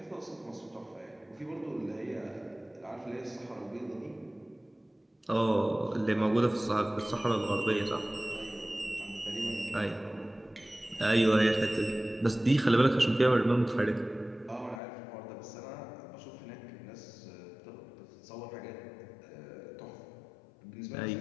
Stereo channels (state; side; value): drops out; right; at 14.8 s